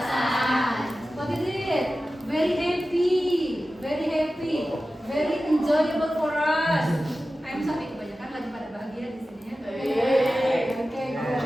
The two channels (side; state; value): both; normal; correlation 0.94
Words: What is it? Very happy, very enjoyable for us. I'm sorry, kebanyakan lagi pada bahagia di sini ya. Okay,